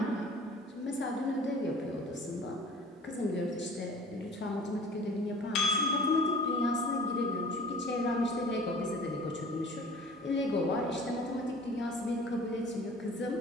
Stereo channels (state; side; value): normal; both; correlation 0.46